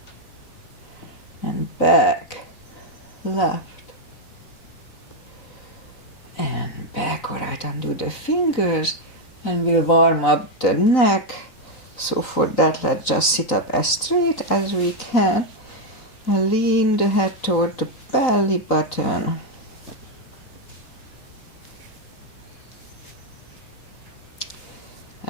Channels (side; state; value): right; late; 3.9 ms